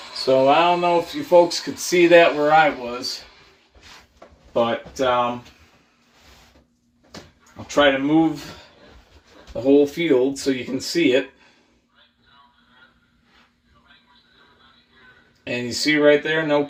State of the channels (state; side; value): identical; both; correlation 1.00